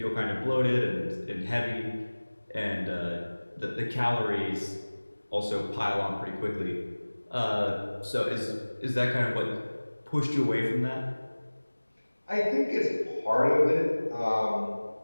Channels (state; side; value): inverted; both; correlation -1.00